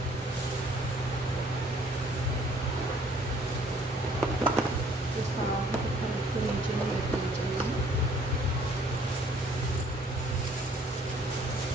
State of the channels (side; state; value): both; normal; correlation 0.60